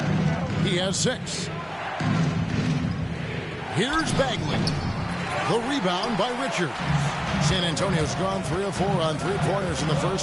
He has 6. Here's Bagley. The rebound by Richards. San Antonio's gone 3 of 4 on 3-pointers in the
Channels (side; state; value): both; identical; correlation 1.00